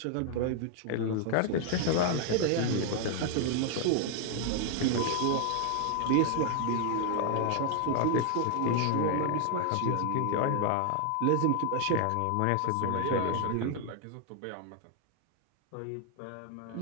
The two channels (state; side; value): different; both; correlation 0.00